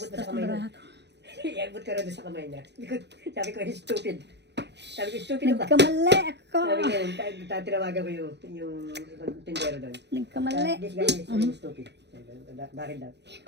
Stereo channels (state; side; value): late; left; 0.50 ms